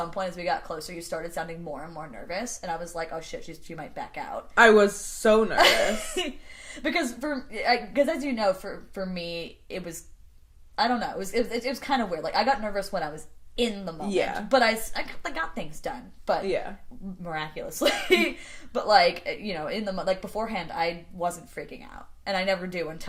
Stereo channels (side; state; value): both; identical; correlation 1.00